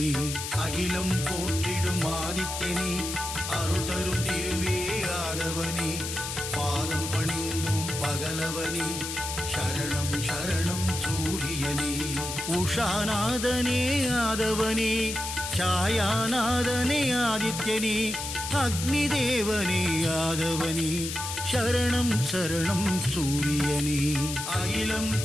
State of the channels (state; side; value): noise; left; hiss, 5 dB below the sound